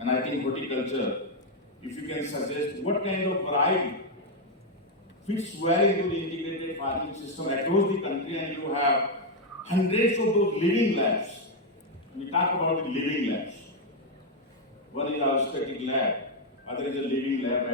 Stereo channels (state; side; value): normal; both; correlation 0.02